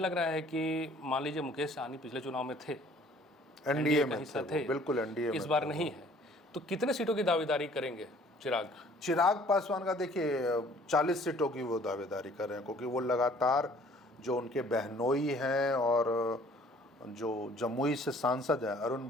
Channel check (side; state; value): both; normal; correlation 0.55